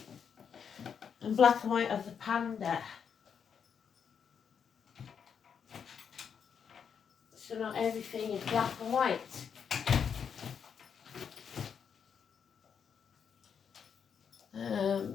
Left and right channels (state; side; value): quieter; right; 7.2 dB